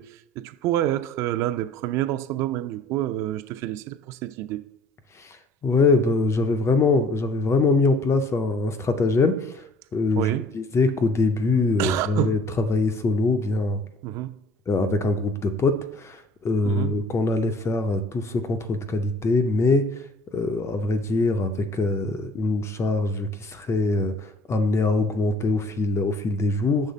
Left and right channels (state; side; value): normal; both; correlation 0.53